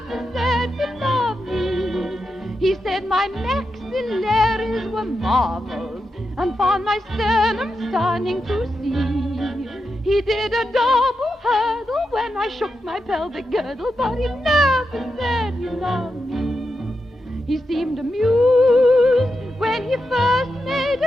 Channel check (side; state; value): both; normal; correlation 0.87